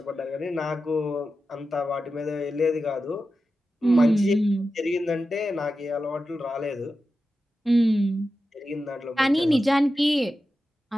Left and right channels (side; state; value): both; normal; correlation 0.92